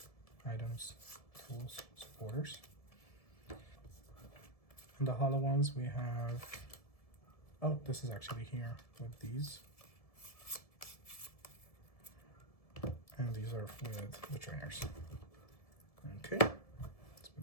items, tools, supporters. And the hollow ones we have, oh, this is actually here with these. And these are with the trainers. Okay, let's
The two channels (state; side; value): late; right; 1.7 ms